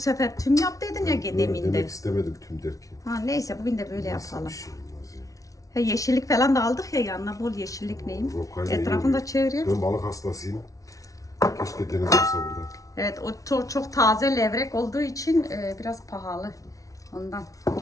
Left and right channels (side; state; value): right; late; 0.17 ms